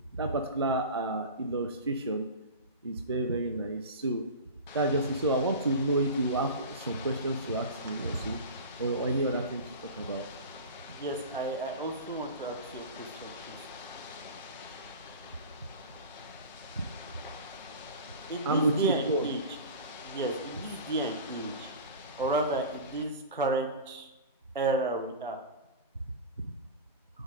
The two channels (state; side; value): inverted; both; correlation -0.32